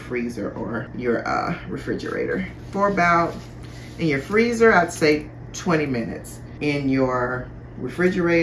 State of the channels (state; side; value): identical; both; correlation 1.00